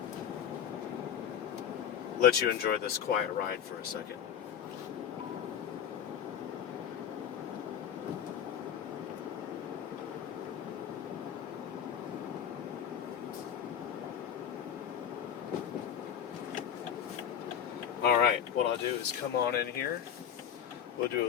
let you enjoy this quiet ride for a second. Alright, what I'll do is come on in here. We'll do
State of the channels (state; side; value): quieter; right; 8.9 dB